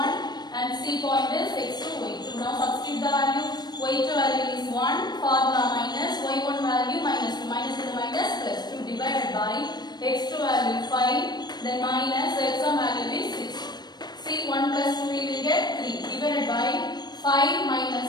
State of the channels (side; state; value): right; late; 0.20 ms